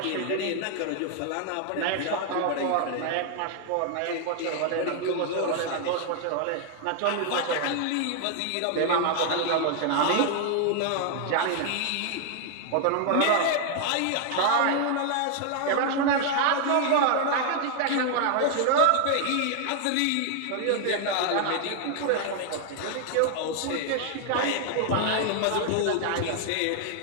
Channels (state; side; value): different; both; correlation 0.00